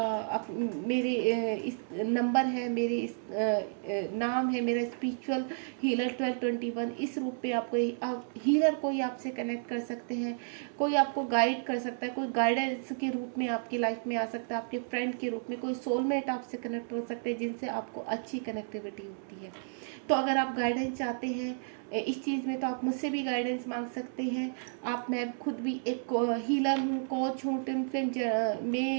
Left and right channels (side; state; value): left; silent; 57 dB below the other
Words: मेरे इस नंबर है, मेरे इस नाम है, मेरा स्पिरिचुअल हीलर 1221। इस रूप में आपको हीलर कोई आपसे कनेक्ट कर सकते हैं, कोई आपको गाइड कर सकता है, कोई गाइडेंस के रूप में आपकी लाइफ में आ सकता है, आपके फ्रेंड के रूप में कोई सोलमेट आपसे कनेक्ट हो सकते हैं, जिनसे आपको अच्छी कनेक्टिविटी होती है। तो अगर आप गाइडेंस चाहते हैं इस चीज़ में, तो आप मुझसे भी गाइडेंस मांग सकते हैं। मैं खुद भी एक हीलर हूँ, कोच हूँ, ट्विन फ्लेम